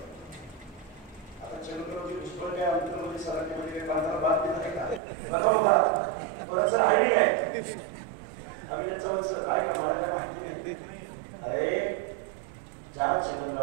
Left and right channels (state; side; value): drops out; left; at 5.0 s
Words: आता छेडूनवरती भुजबळ काय अंतरमध्ये सराटीमध्ये काही बांधायला बात देत आहे का? बघा बाबा थोडंसं आयडी काय अभिनंदन सर आहे का? मला काय माहिती नाही. अरे ज्या